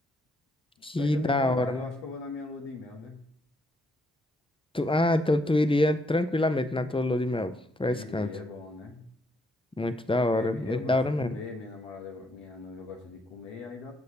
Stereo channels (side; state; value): both; normal; correlation 0.74